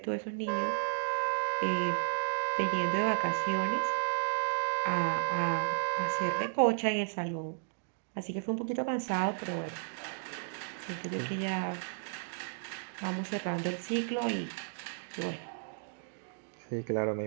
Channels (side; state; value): left; silent; digital silence